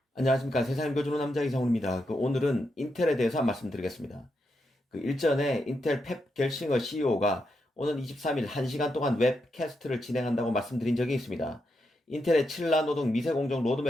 안녕하십니까. 세상 읽어주는 남자 이상훈입니다. 오늘은 인텔에 대해서 말씀드리겠습니다. 일전에 인텔 펩 겔싱어 CEO가 오는 23일 1시간 동안 웹캐스트를 진행한다고 말씀드린 적이 있습니다. 인텔의 7나노 등 미세공정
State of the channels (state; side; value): normal; both; correlation 0.84